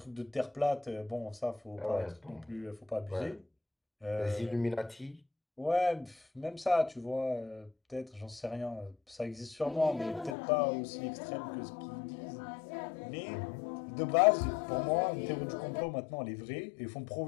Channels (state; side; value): drops out; right; at 10.4 s